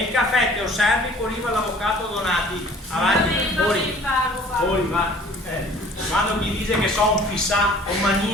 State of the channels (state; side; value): normal; both; correlation 0.51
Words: il caffè che osservi quando arriva l'avvocato Donati. Avanti, fuori. Fuori, va. Quando mi dice che sono un fissato, un